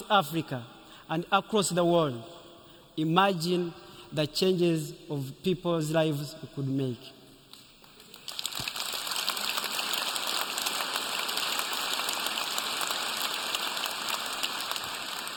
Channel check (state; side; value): identical; both; correlation 1.00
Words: Africa and across the world, imagine the changes of people's lives we could make.